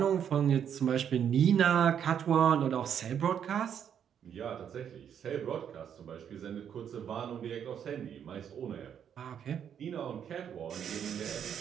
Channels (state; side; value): quieter; left; 8.6 dB